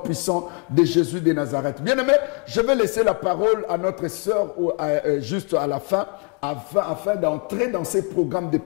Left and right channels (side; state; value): right; quieter; 36.1 dB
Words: de Jésus de Nazareth. Bien aimé, je vais laisser la parole à notre sœur juste à la fin, afin d'entrer dans ces programmes de